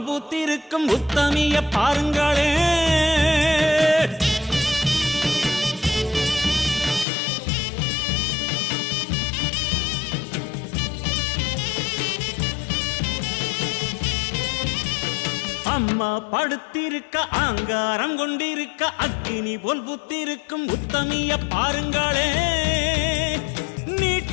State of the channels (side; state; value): right; drops out; at 7.1 s